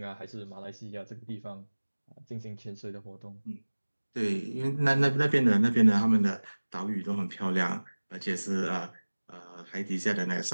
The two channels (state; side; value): inverted; both; correlation -1.00